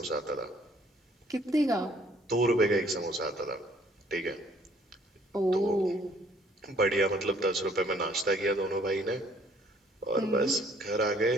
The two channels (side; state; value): both; normal; correlation 0.61